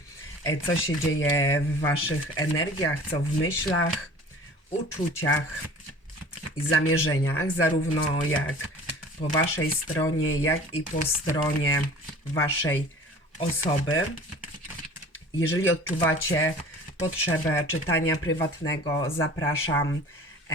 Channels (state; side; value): normal; both; correlation 0.44